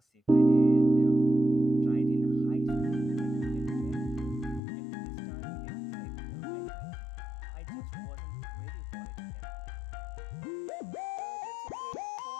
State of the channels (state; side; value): drops out; right; at 4.6 s